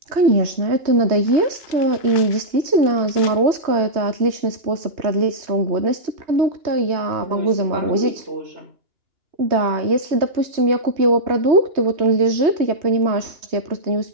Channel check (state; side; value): late; left; 3.2 ms